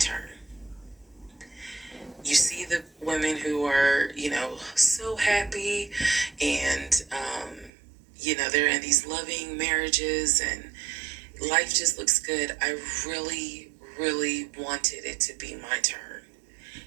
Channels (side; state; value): left; drops out; at 7.7 s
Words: You see the women who are, so happy and, they're in these loving marriages and life just looks good. I really, really wanted it to be my turn.